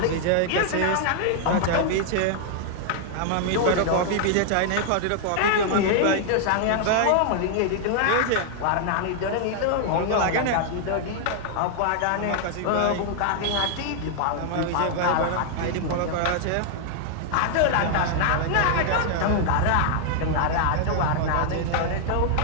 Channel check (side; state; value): both; different; correlation 0.00